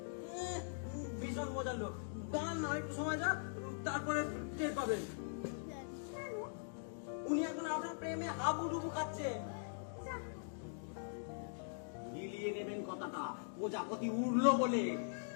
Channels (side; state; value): right; silent; digital silence